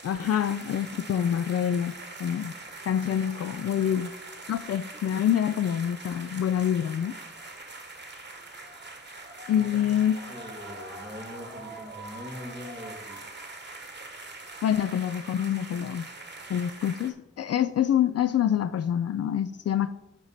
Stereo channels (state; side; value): quieter; right; 8.6 dB